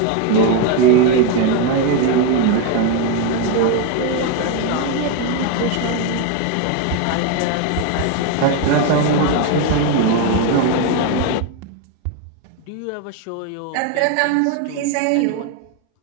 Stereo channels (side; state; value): both; different; correlation 0.02